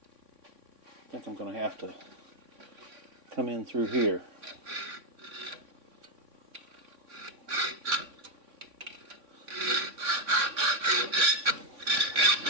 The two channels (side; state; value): left; late; 3.6 ms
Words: I think I'm going to have to come in through here.